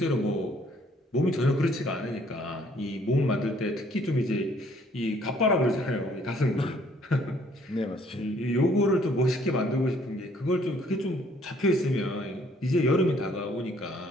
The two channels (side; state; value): both; normal; correlation 0.62